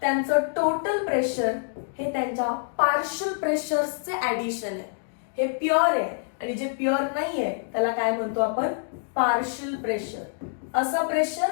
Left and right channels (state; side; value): silent; right; digital silence